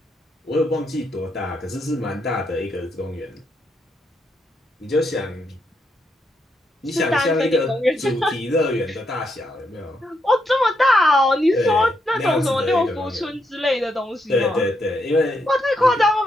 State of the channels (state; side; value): normal; both; correlation 0.79